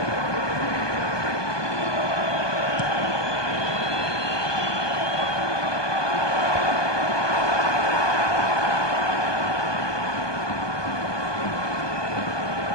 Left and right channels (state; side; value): late; right; 1.2 ms